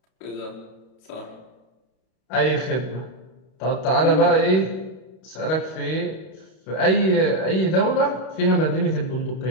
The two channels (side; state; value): right; late; 32 ms